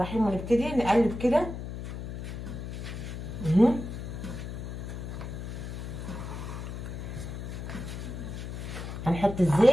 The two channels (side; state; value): left; noise; hum, 7 dB below the sound